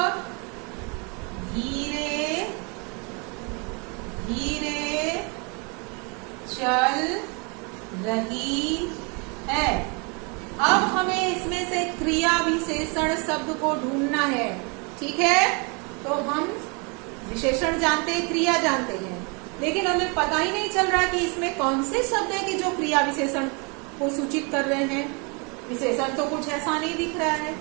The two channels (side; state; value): left; quieter; 32.5 dB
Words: धीरे धीरे चल रही है। अब हमें इसमें से क्रिया विशेषण शब्द को ढूंढना है, ठीक है। तो हम विशेषण जानते हैं, क्रिया जानते हैं, लेकिन हमें पता ही नहीं चल रहा कि इसमें कौन से शब्द है कि जो क्रिया विशेषण को सूचित कर रहे हैं। विशेषण तो कुछ ऐसा नहीं दिख रहा है।